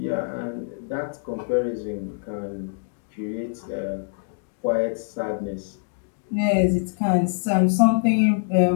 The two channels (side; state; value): right; silent; digital silence